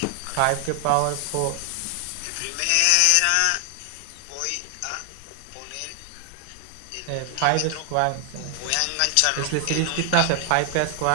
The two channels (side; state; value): both; different; correlation 0.00